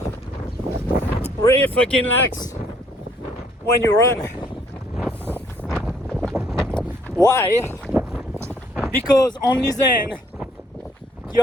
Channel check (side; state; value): both; normal; correlation 0.65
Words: Really fucking relax when you run. Why? Because only then